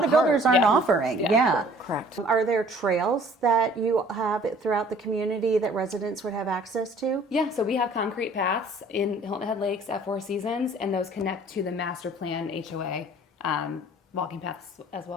of builders part. aren't Yeah. offering. Yeah. Yeah. Correct. Are there trails that you have throughout the community that residents would have access to? Yeah, so we have concrete paths in Hilton Head Lakes at Four Seasons, and those connect to the master plan HOA walking paths as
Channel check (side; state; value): both; normal; correlation 0.54